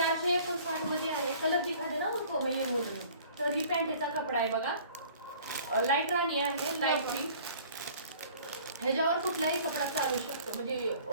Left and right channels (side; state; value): both; inverted; correlation -0.51